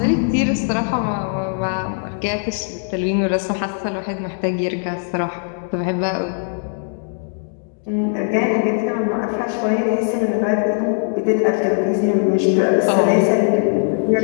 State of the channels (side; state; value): right; silent; digital silence